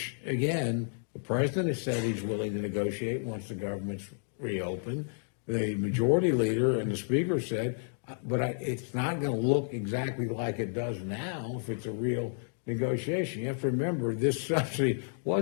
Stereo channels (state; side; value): silent; right; digital silence